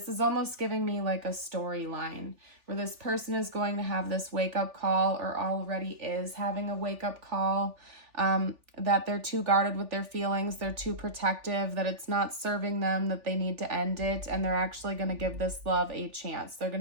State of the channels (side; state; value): left; late; 3.4 ms